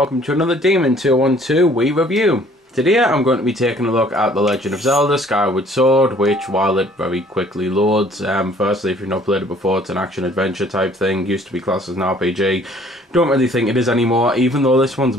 to another Demon 212 Wii review. Today I'm going to be taking a look at the Legend of Zelda Skyward Sword, which while it very quickly loads, firstly if you've not played it before, it's an action adventure type thing, used to be classed as an RPG. Don't really think it is anymore, even though this one's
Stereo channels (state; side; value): normal; both; correlation 0.57